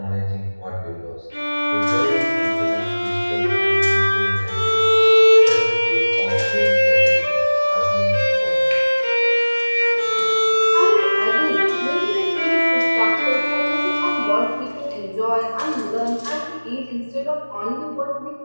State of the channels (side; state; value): both; inverted; correlation -1.00